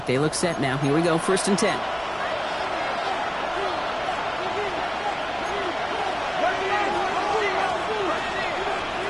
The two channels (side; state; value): right; noise; hum, 25 dB below the sound